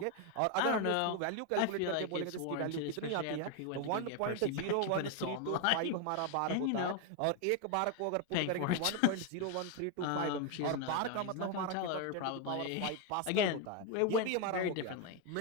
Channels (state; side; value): different; both; correlation 0.01